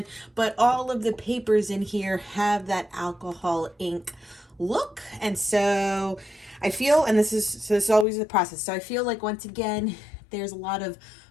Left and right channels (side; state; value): right; drops out; at 8.1 s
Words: But all of the papers in here have that alcohol ink look, and so I feel, and this is always the process, so I feel like once again there's a lot of